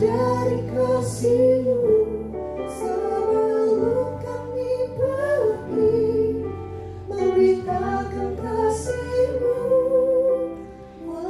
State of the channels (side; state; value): both; identical; correlation 1.00